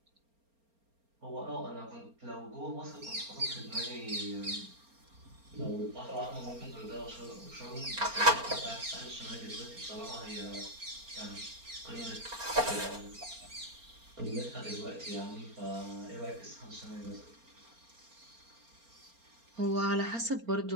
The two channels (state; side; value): late; left; 4.3 ms